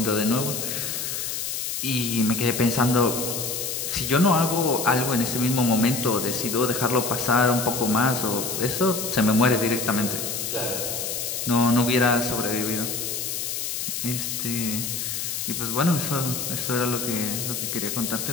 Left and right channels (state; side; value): noise; left; hiss, 3 dB below the sound